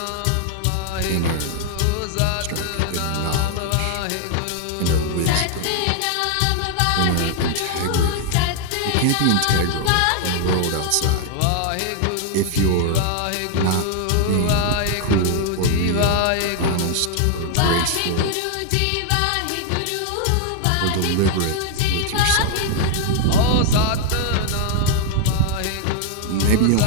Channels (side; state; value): both; different; correlation 0.00